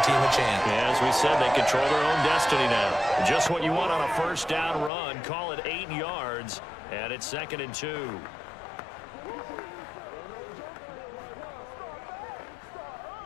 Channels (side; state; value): right; drops out; at 4.9 s